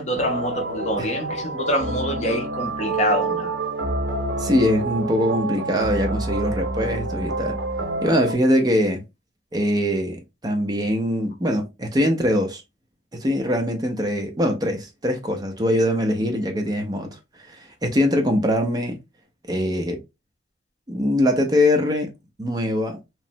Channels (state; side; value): normal; both; correlation 0.54